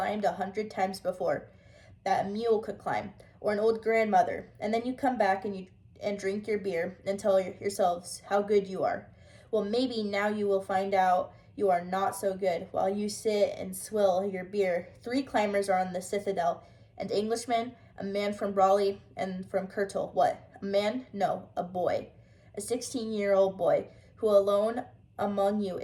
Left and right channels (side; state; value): both; identical; correlation 1.00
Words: 100 times before, that a mule could climb, or an old grandmother. And then you come back and drink your beer and tell yourselves how good you are. Well, maybe now you will find out you are not so good. While you sit and swill your beer, 3 climbers are on the citadel, an Englishman, a man from Brawley, and from Kurtul. What? A man? No, a boy. A 16-year-old boy, who alone among you